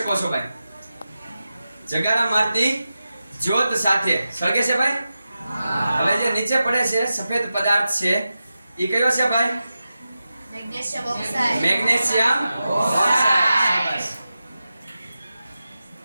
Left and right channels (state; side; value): inverted; both; correlation -0.92